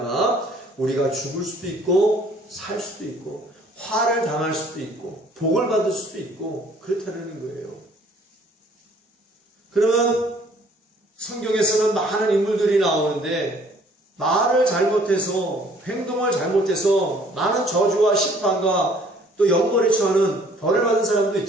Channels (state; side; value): normal; both; correlation 0.58